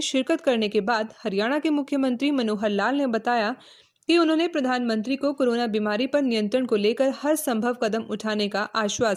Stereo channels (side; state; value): both; identical; correlation 1.00